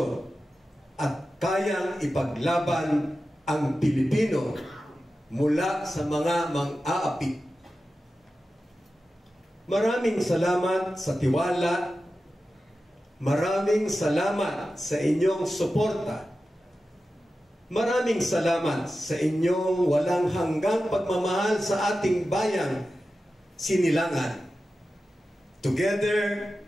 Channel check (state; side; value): normal; both; correlation 0.93